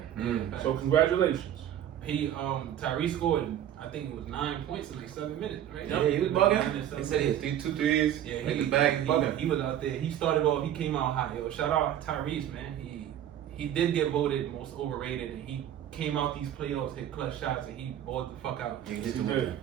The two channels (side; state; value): left; quieter; 10.9 dB